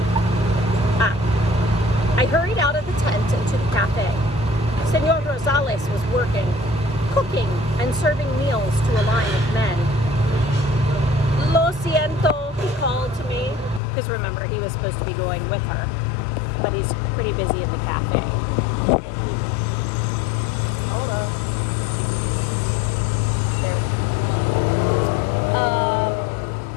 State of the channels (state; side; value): drops out; right; at 13.8 s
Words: I hurried out of the tent and to the cafe. Senor Rosales was working, cooking and serving meals to a line of men. "Lo siento," he called to me, because remember, he was supposed to be going with her, but he's pretty busy in the cafe.